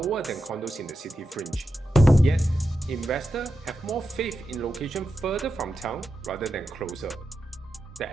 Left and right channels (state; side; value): normal; both; correlation 0.89